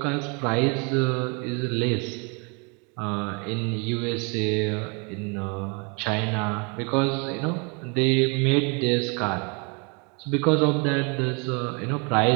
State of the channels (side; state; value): left; quieter; 33.3 dB